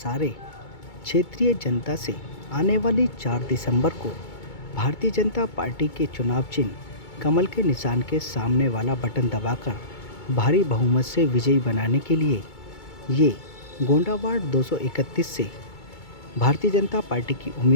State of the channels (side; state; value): right; late; 2.2 ms